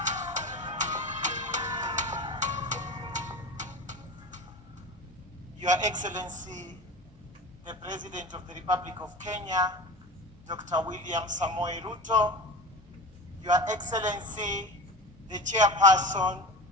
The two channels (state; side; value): normal; both; correlation 0.32